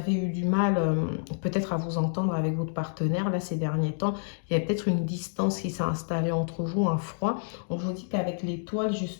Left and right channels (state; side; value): silent; right; digital silence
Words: eu du mal peut-être à vous entendre avec votre partenaire. Là, ces derniers temps, il y a peut-être une distance qui s'est installée entre vous, un froid. On vous dit qu'avec l'étoile,